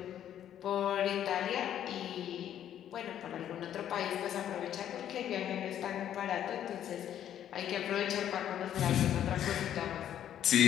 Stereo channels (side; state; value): right; quieter; 10.6 dB